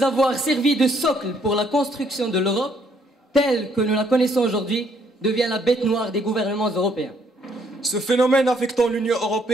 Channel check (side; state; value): both; normal; correlation 0.68